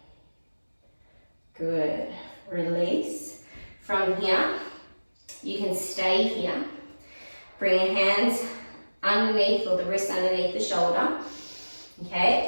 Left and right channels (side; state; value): both; inverted; correlation -1.00